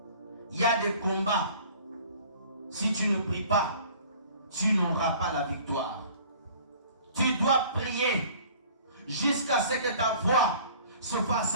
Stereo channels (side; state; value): both; inverted; correlation -0.49